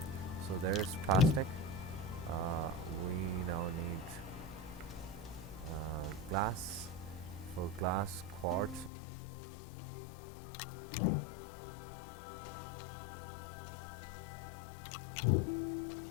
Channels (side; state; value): right; drops out; at 8.9 s